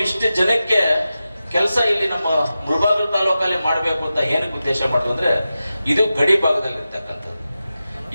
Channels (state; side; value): inverted; both; correlation -0.93